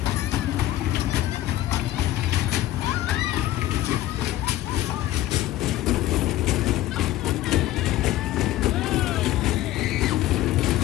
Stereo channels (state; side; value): quieter; right; 14.6 dB